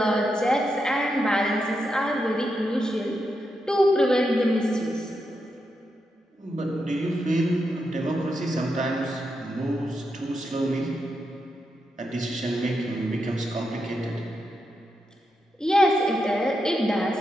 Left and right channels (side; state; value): both; normal; correlation 0.85